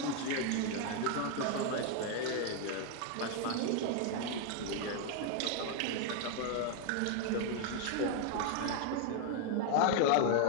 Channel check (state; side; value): different; both; correlation 0.01